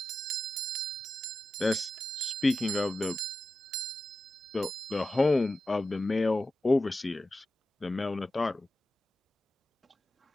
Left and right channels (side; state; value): both; normal; correlation 0.91